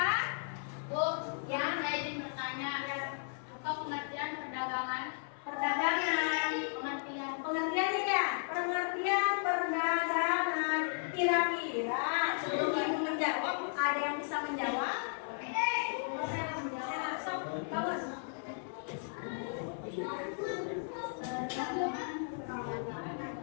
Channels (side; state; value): right; silent; 54 dB below the other